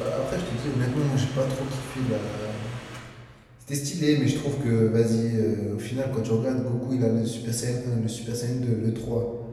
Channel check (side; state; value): both; identical; correlation 1.00